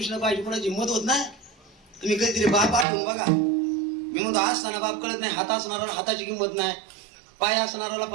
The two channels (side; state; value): left; drops out; at 2.9 s